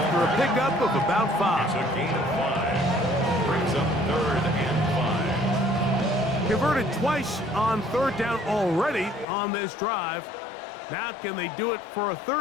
a pickup of about 5. It's a gain of 5. Brings up 3rd and 5. Converted twice on third down already on this drive. Now can they do it for a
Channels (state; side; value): drops out; right; at 9.2 s